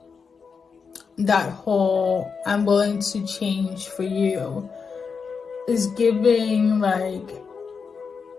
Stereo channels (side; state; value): right; quieter; 5.6 dB